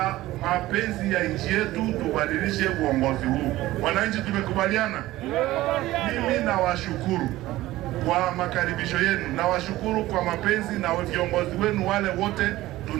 mapenzi ya nchi yetu, tubadilishe uongozi huu. Wananchi tumekubaliana. Mimi nawashukuru kwa makaribisho yenu, nawashukuru kwa mapenzi na viongozi wenu wale wote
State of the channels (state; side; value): quieter; left; 16.6 dB